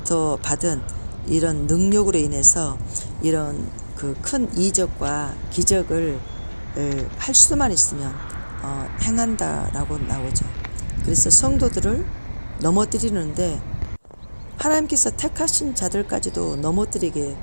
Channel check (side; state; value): both; inverted; correlation -1.00